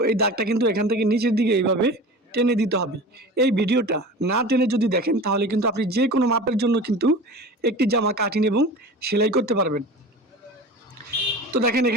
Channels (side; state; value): both; normal; correlation 0.35